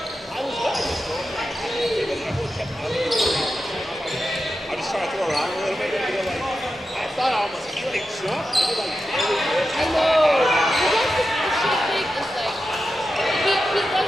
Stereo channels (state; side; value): normal; both; correlation 0.90